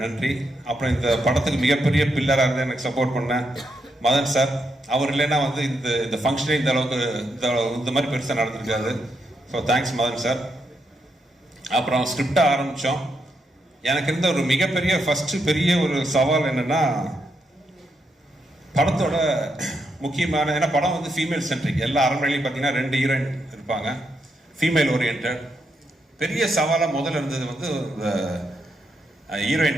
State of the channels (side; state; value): both; normal; correlation 0.81